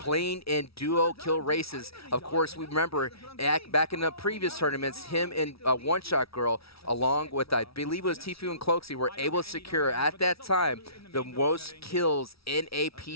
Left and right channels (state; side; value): late; right; 0.76 ms